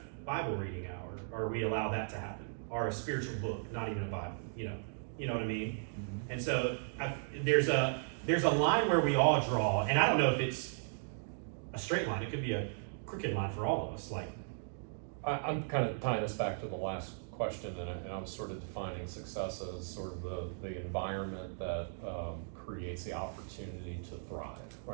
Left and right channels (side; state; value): left; silent; digital silence